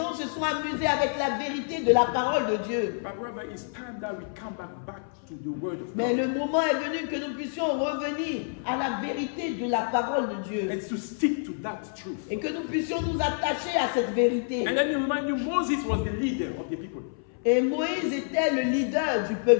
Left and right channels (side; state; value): right; silent; 57 dB below the other